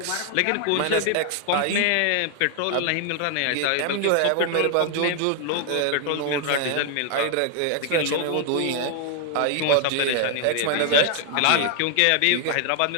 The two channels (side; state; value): both; different; correlation 0.00